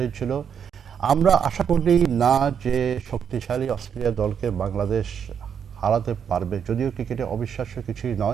আমরা আশা করি না যে শক্তিশালী অস্ট্রেলিয়া দলকে বাংলাদেশ হারাতে পারবে, যদিও ক্রিকেটে অবিশ্বাস্য কিছুই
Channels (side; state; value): left; quieter; 7.7 dB